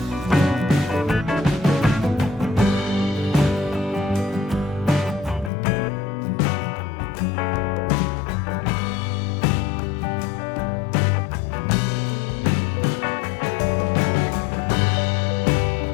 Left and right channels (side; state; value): right; drops out; at 5.5 s